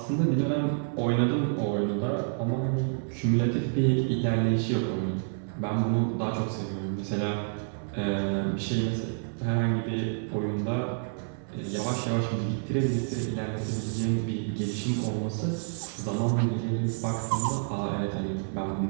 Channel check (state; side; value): silent; left; 59 dB below the other